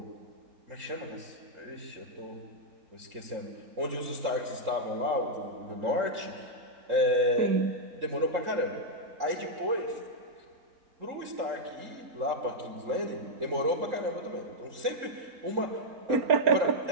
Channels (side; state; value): left; late; 3.8 ms